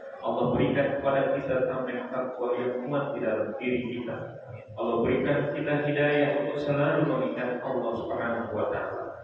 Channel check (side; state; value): both; identical; correlation 1.00